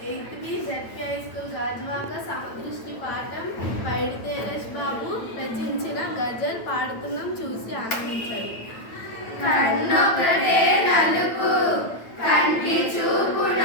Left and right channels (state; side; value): late; right; 9.0 ms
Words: 8th B ZP high school Gajuwaka సమదృష్టి పాఠం పైడి తేరేష్ బాబు రచించిన గజల్ పాడుతున్నాం, చూసి ఆనందించండి. కన్నొకటే నలుపు, కంటి చూపు